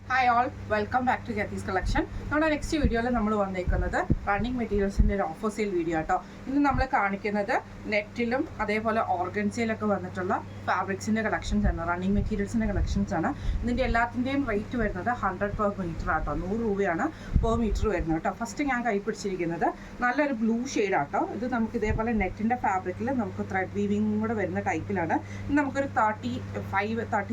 Hi all, welcome back to ഗെത്തീസ് collection. നമ്മുടെ next വീഡിയോയിൽ നമ്മൾ വന്നേക്കുന്നത് റണ്ണിങ് മെറ്റീരിയൽസിൻ്റെ ഒരു ഓഫർ സെയിൽ വീഡിയോ കേട്ടോ. ഇന്ന് നമ്മൾ കാണിക്കുന്നത് നെറ്റിലും അതേപോലെ ഓർഗൻസയിലൊക്കെ വന്നിട്ടുള്ള ഫാബ്രിക്സിൻ്റെ കളക്ഷൻസ് ആണ്, റണ്ണിങ് മെറ്റീരിയൽസിൻ്റെ കളക്ഷൻസ് ആണ്. ഇതിൻ്റെ എല്ലാത്തിൻ്റെയും റേറ്റ് വരുന്നത് 100 per മീറ്റർ ആട്ടോ, 100 രൂപയാണ് പെർ മീറ്റർ വരുന്നത് കേട്ടോ. ഫസ്റ്റ് ഞാൻ കൈ പിടിച്ചിരിക്കുന്നത് നല്ലൊരു ബ്ലൂ ഷെയ്ഡ് ആട്ടോ. ഇത് നമുക്ക് ഇതേപോലെ നെറ്റിൻ്റെ ഫാബ്രിക്കിൽ നമുക്ക് ത്രെഡ് വീവിങ് കൂടെ വരുന്ന ടൈപ്പിലാണ്. ഇത് നമുക്കൊരു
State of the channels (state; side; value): identical; both; correlation 1.00